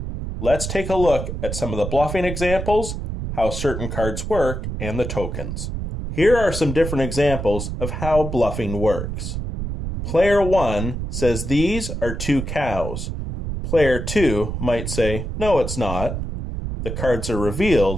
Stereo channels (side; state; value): right; noise; rumble, 5 dB below the sound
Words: Let's take a look at some of the bluffing examples, how certain cards work, and the tokens. Here are some different examples of how bluffing works. Player 1 says these are 2 cows. Player 2 might say, no, it's not. The cards are